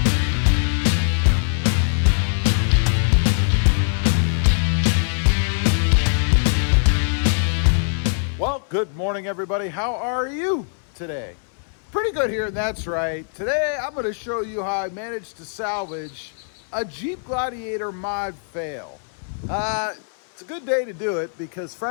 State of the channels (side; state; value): right; silent; digital silence